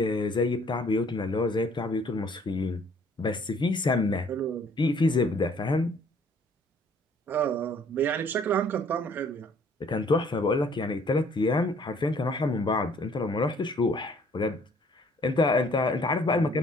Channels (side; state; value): both; normal; correlation 0.59